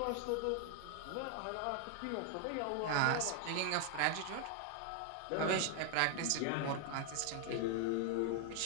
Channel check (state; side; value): different; both; correlation 0.00